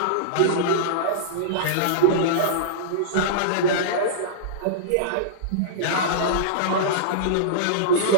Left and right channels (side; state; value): both; different; correlation -0.03